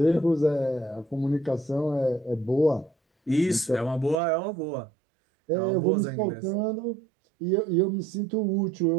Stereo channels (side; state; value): left; drops out; at 4.2 s